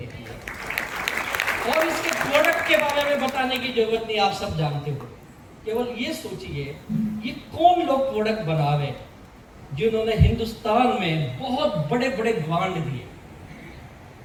है। और इसके प्रोडक्ट के बारे में बताने की जरूरत नहीं, आप सब जानते हो। केवल ये सोचिए ये कौन लोग प्रोडक्ट बना रहे जिन्होंने हिंदुस्तान में बहुत बड़े बड़े ब्रांड दिए।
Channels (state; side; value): identical; both; correlation 1.00